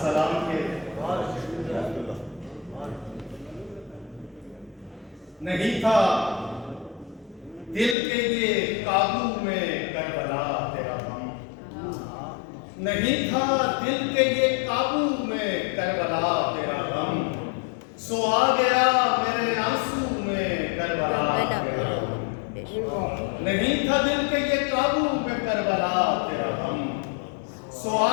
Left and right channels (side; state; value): right; drops out; at 8.0 s